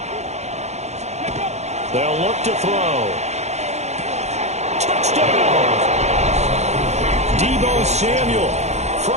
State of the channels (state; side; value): late; left; 0.32 ms